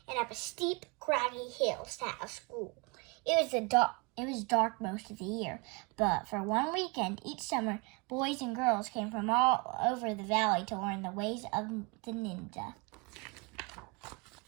and up a steep, craggy hill sat a school. It was dark most of the year, but for one weekend each summer, boys and girls came from all over the valley to learn the ways of the ninja.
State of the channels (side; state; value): left; quieter; 29.5 dB